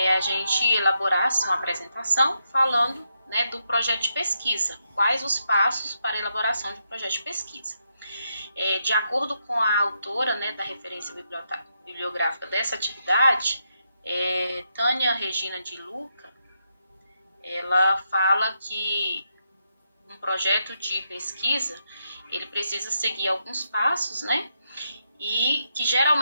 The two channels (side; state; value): both; inverted; correlation -0.82